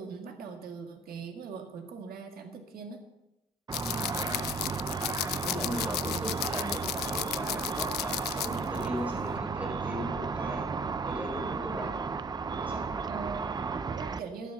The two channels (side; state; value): both; normal; correlation 0.52